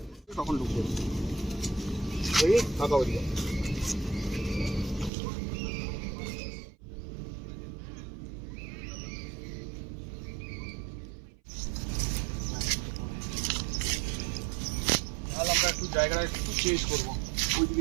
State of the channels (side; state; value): left; drops out; at 5.1 s